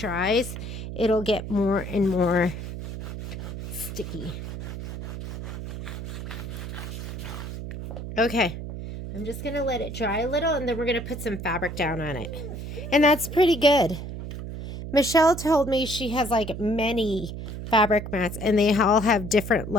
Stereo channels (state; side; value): noise; right; hum, 8 dB below the sound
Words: it'll get more and more sticky. Okay, I'm just going to let it dry a little, and then we're going to put some fabric down on it. And that's pretty good. Michelle told me she has like many fabric mats, and they all have different